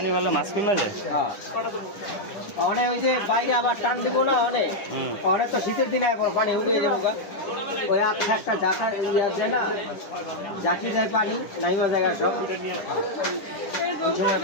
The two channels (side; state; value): right; late; 10 ms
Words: ভালো মাছ কিনবা যায় অনেক ওই যে বাইরে আবার টান দিব না অনেক অনেক তো শীতের দিনে পানি উঠে যাবো ওই একটা জাকা আছে না জাকি যায় পানি নাইমা জায়গা সব ওই সময়